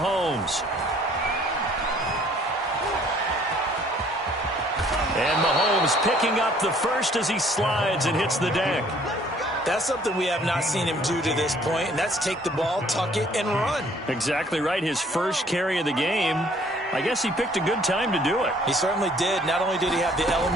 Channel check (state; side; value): normal; both; correlation 0.59